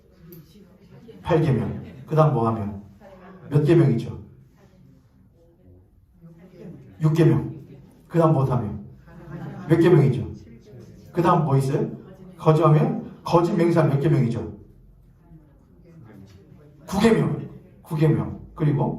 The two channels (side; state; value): both; identical; correlation 1.00